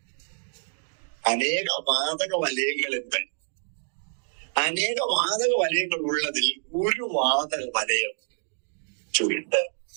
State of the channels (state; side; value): silent; left; 60 dB below the other